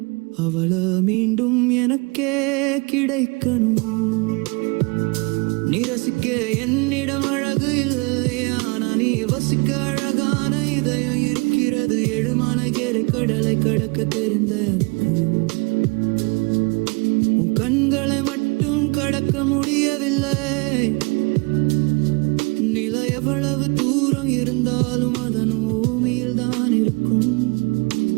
அவளை மீண்டும் எனக்கே கிடைக்கணும். நீ ரசிக்க என்னிடம் அழகு இல்லையா, நீ வசிக்க அழகான இதயம் இருக்கிறது. எழுமான கேரை கடலை கடக்க தெரிந்த உன் கண்களை மட்டும் கடக்க முடியவில்லை. நிலை எவ்வளவு தூரம் இருந்தாலும் அதன் பூமியில் தான் இருக்கும்.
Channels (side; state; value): left; quieter; 29.6 dB